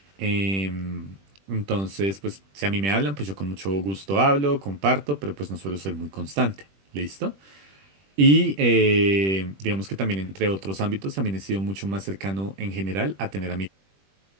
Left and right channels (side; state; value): left; late; 21 ms